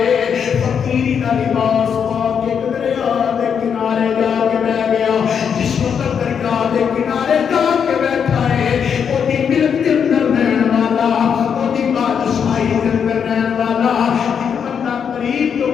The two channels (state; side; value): quieter; right; 7.3 dB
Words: فقیری دا لباس پاک ایک دریا دے کنارے جا کے بیٹھ گیا جس وقت دریا دے کنارے جا کے بیٹھا ہے وہ دی ملک کے اندر رہن والا وہ دی بادشاہی کے اندر رہن والا ایک بندہ قریب تو